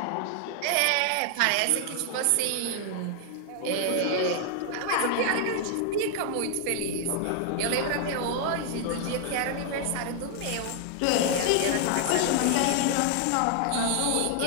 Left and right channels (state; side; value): different; both; correlation 0.00